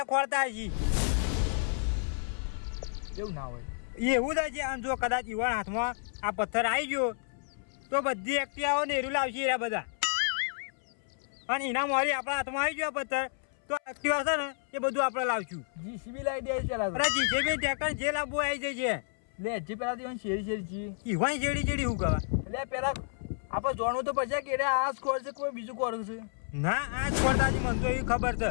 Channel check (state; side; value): silent; right; 57 dB below the other